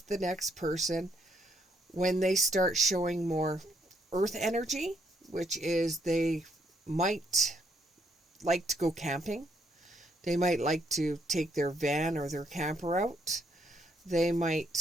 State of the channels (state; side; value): normal; both; correlation 0.73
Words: the next person when they start showing more earth energy, which is they might like to go camping. They might like to take their van or their camper out. They